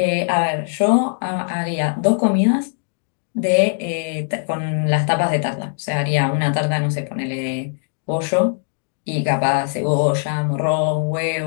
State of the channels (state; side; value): silent; right; digital silence